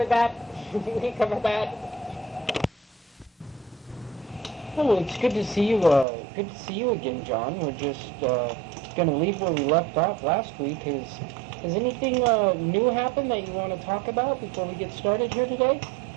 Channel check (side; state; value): left; drops out; at 6.1 s